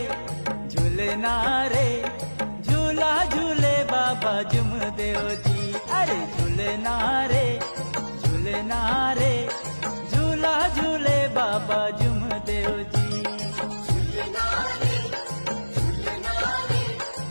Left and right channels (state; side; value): inverted; both; correlation -1.00